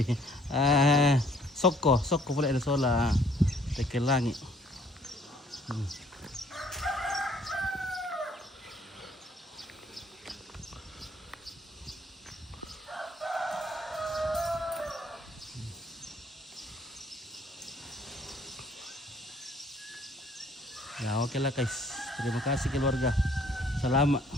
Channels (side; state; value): both; normal; correlation 0.60